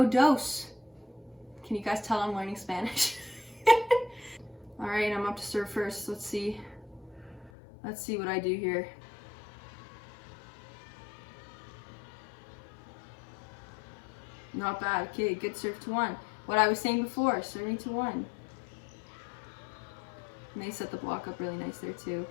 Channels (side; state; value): right; drops out; at 7.5 s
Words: dos. Can you guys tell I'm learning Spanish? All right, I'm up to serve first. Let's see what I do here. Not bad. Okay, good serve to 1. what I was saying before, serving to 1. And they set the block up really nice there too.